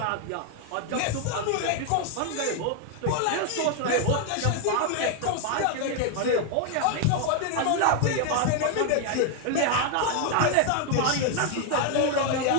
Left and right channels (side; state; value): both; different; correlation 0.01